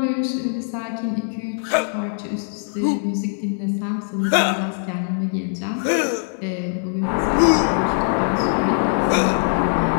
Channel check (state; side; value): silent; right; 64 dB below the other